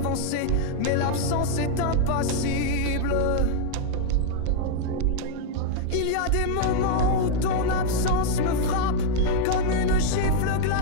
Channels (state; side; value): different; both; correlation 0.00